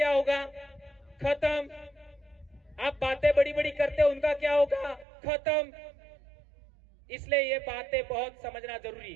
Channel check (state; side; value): drops out; left; at 5.1 s